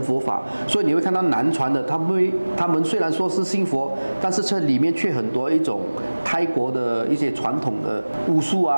佛法。所以你会看到南传的，他们虽然说是信佛，但是这里面却很多一种泰国的一些传统的巫术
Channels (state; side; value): inverted; both; correlation -1.00